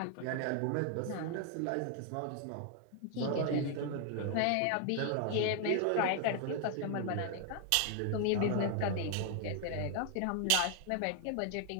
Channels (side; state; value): both; different; correlation 0.00